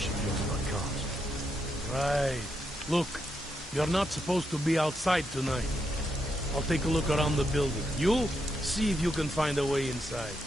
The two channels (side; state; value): both; normal; correlation 0.82